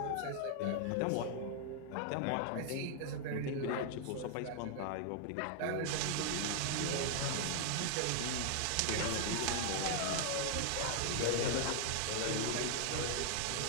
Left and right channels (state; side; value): different; both; correlation 0.00